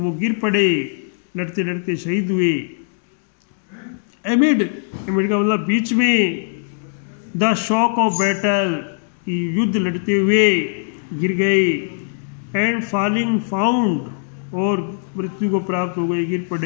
गिर पड़े, लड़ते लड़ते शहीद हुए. एमिड का मतलब बीच में. द शॉक ऑफ बैटल, युद्ध लड़ते हुए गिर गए. एंड फॉलिंग फाउंड, और मृत्यु को प्राप्त हो गए, गिर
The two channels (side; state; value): right; silent; digital silence